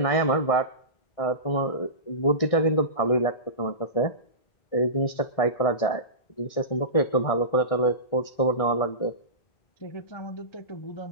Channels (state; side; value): late; right; 1.6 ms